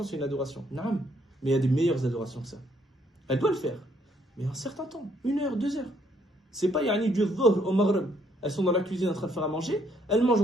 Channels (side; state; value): both; normal; correlation 0.69